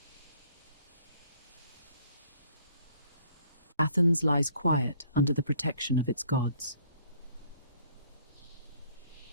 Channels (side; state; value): both; inverted; correlation -0.61